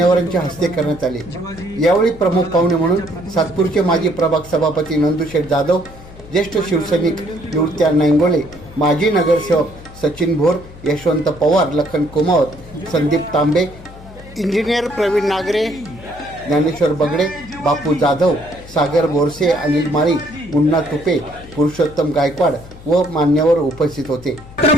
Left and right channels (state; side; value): noise; left; hum, 18 dB below the sound